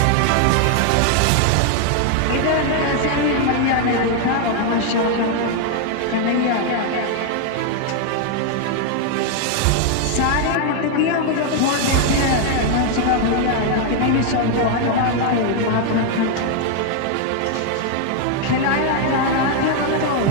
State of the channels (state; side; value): different; both; correlation 0.00